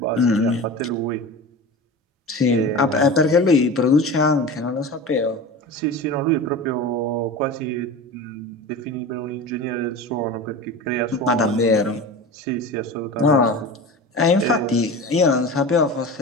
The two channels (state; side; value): normal; both; correlation 0.31